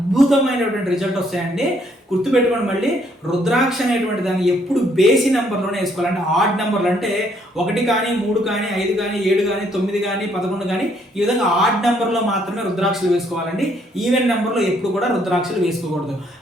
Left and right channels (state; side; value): normal; both; correlation 0.68